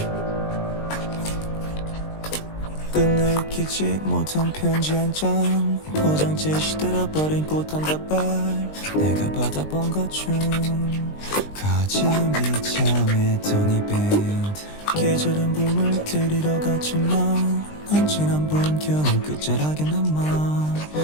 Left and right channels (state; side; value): late; right; 20 ms